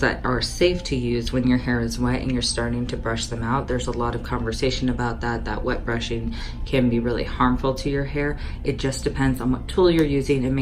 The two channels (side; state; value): both; identical; correlation 1.00